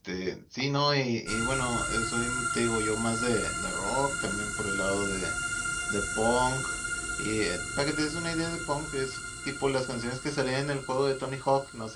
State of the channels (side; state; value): both; identical; correlation 1.00